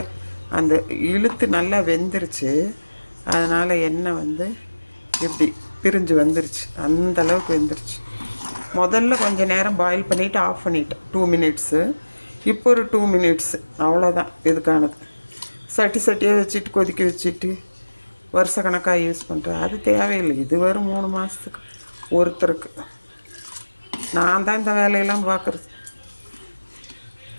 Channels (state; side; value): inverted; both; correlation -1.00